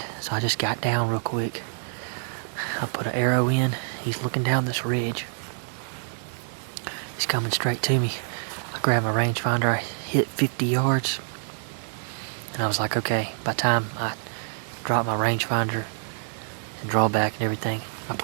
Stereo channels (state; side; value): silent; left; digital silence